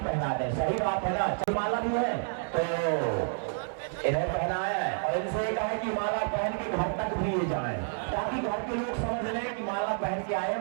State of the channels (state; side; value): silent; left; digital silence